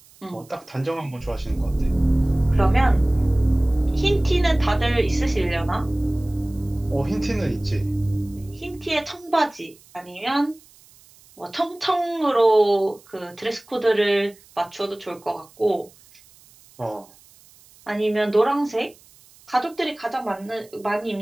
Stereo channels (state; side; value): noise; right; hiss, 27 dB below the sound